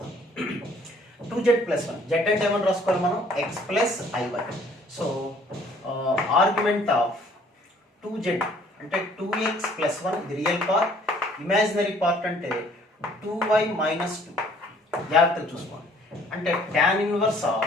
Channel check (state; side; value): normal; both; correlation 0.58